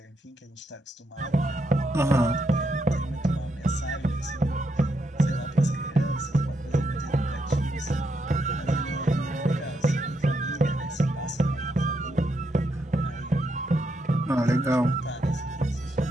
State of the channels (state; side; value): normal; both; correlation 0.80